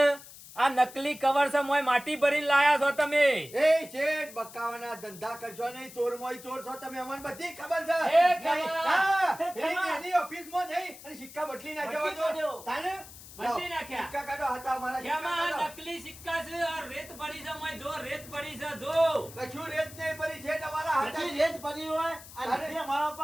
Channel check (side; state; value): left; noise; hiss, 17 dB below the sound